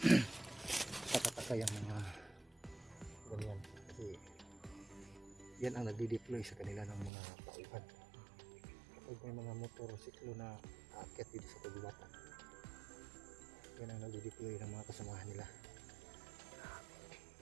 Takataka yung mga ganyan. Kasi yan ang nagdi-deploy sa kanila ng mga tauhan. Kapag may mga motorsiklo na aakyat dito sa kagubatan, yan ang nagdi-deploy ng mga kasamahan nila.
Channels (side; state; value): left; drops out; at 7.1 s